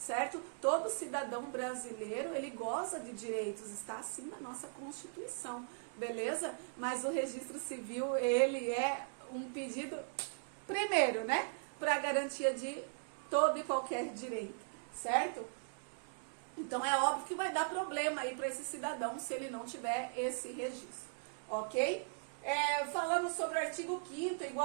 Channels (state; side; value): silent; left; digital silence